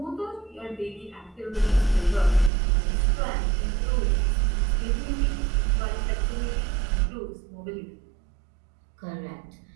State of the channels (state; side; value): drops out; left; at 2.5 s